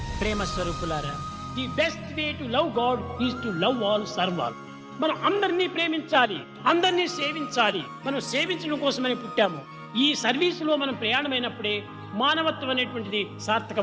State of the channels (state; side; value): identical; both; correlation 1.00